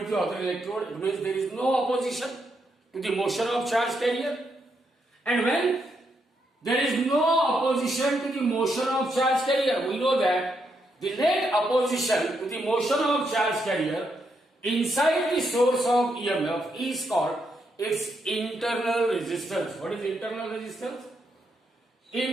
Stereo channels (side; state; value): both; normal; correlation 0.79